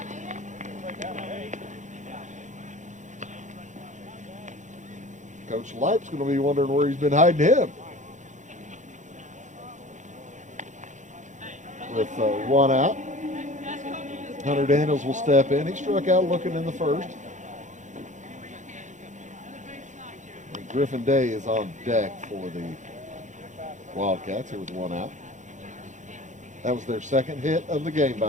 Coach Leip's going to be wondering where he's been hiding him. With 1 out, Hunter Daniels will step in. He struck out looking in the first. And Griffin Day is on deck for the Wildcats here with 1 out. That was their second hit of the game,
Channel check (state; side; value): late; left; 0.35 ms